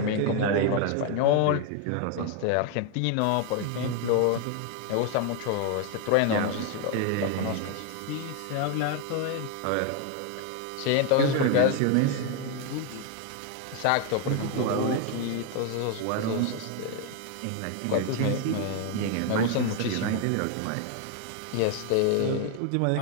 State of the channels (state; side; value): different; both; correlation 0.01